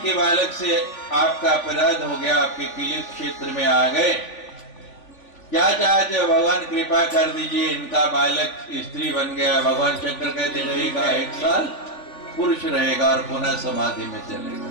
बालक से आपका अपराध हो गया, आपके किले क्षेत्र में आ गए, क्या चाहते हो? भगवान कृपा कर दीजिए, इनका बालक स्त्री बन गया। भगवान शंकर कहते रहेगा 1 साल पुरुष रहेगा और पुनः समाधि में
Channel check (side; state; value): right; late; 3.5 ms